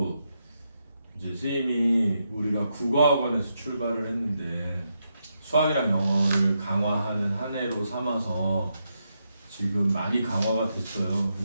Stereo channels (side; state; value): both; inverted; correlation -0.83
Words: 이제 선생님이 우리가 국어학원에서 출발을 했는데 수학이랑 영어를 강화하는 한 해로 삼아서 지금 많이 강화가 됐어요.